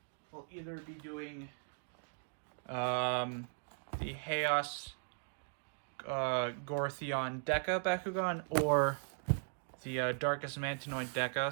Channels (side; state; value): left; silent; digital silence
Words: will either be doing the Aqous Gortheon Deca Bakugan or the Darkus Mantinoid